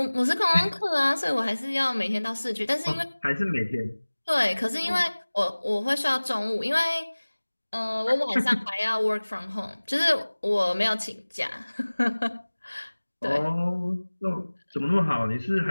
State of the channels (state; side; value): inverted; both; correlation -1.00